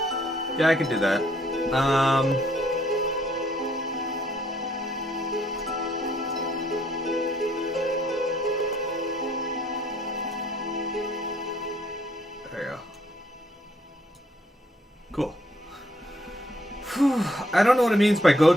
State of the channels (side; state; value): both; normal; correlation 0.68